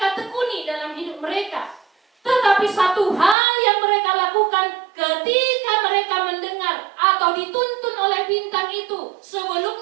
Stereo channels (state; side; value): drops out; left; at 3.4 s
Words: tekuni dalam hidup mereka. Tetapi satu hal yang mereka lakukan ketika mereka mendengar atau dituntun oleh bintang itu,